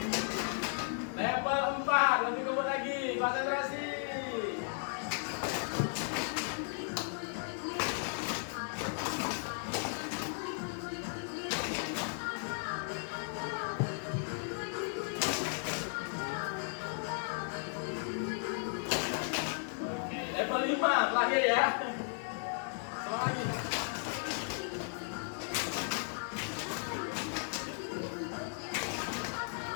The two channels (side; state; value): right; silent; 54 dB below the other